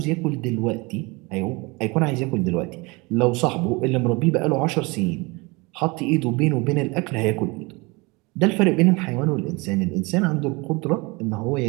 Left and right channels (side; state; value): left; quieter; 26.0 dB